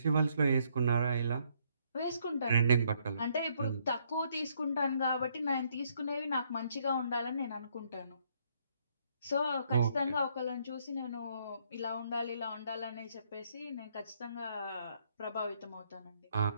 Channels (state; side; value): inverted; both; correlation -0.70